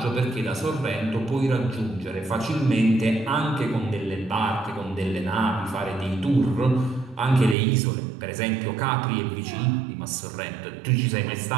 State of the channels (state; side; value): drops out; left; at 7.6 s